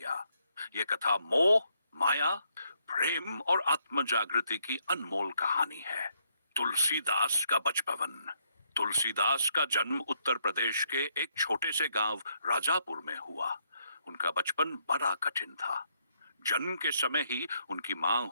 यह कथा मोह, माया, प्रेम और आत्म जागृति की अनमोल कहानी है। तुलसीदास का बचपन। तुलसीदास का जन्म उत्तर प्रदेश के एक छोटे से गांव राजापुर में हुआ। उनका बचपन बड़ा कठिन था। जन्म के समय ही उनकी मां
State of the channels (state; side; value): inverted; both; correlation -0.74